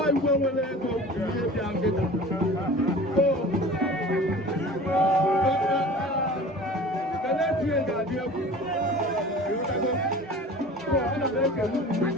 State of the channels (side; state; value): both; normal; correlation 0.41